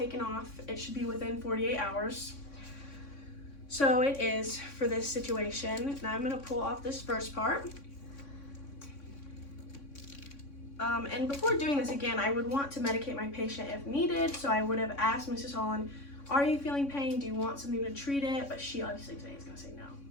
off. It should be within 48 hours. So it is for this situation. Now I'm going to pull off this first part. And before doing this again, I would want to medicate my patient if needed. So I would have asked Mrs. Holland, are you feeling pain? Do you want something to treat it? But she obviously today is going to say no.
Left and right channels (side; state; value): right; late; 3.6 ms